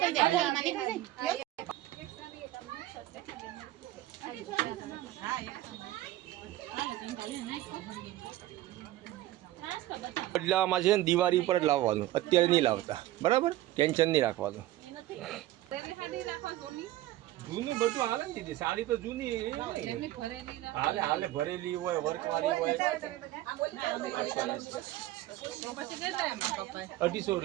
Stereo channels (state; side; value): quieter; left; 15.4 dB